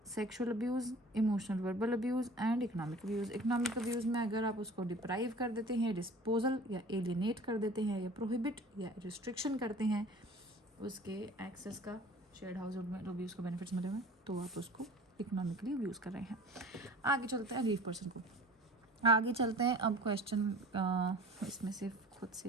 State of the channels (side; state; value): both; normal; correlation 0.44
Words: sexual abuse, emotional verbal abuse and economic abuse. Economic abuse में अगर आप उसको डिप्राइव कर देते हैं, डिस्पोजल या एलिनेट कर देते हैं, या प्रोहिबिट या रिस्ट्रिक्शन करते हैं उसके एक्सेस का, शेयर्ड हाउस होल्ड में अब्यूज़ को बेनिफिट्स मिले हुए, तो आप उसको इकोनॉमिकली अब्यूज़ कर रहे हैं। आगे चलते हैं अग्रीव्ड पर्सन को, आगे चलते हैं। अब क्वेश्चन इसमें से खुद